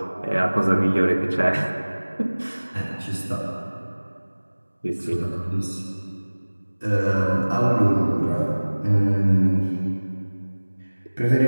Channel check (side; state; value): both; inverted; correlation -1.00